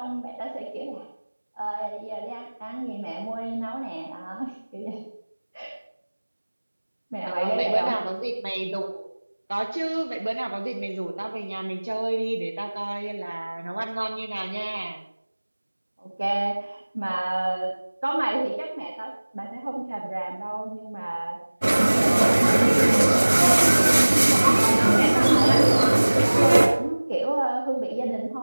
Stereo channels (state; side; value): inverted; both; correlation -1.00